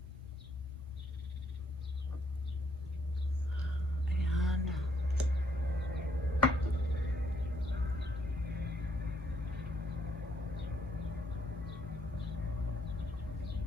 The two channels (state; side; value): normal; both; correlation 0.71